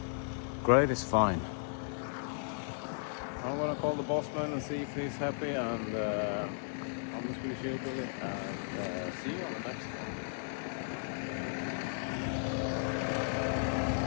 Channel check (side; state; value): right; silent; digital silence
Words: grade is fine. I'm gonna call the bossman and see if he's happy, and I'm the Swedish Hillbilly, and see you on the next one.